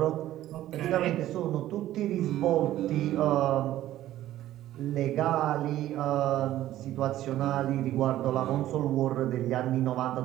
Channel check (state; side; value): quieter; left; 13.7 dB